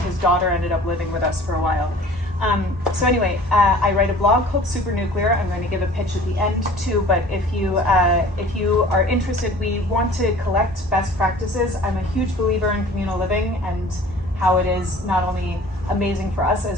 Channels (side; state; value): both; normal; correlation 0.46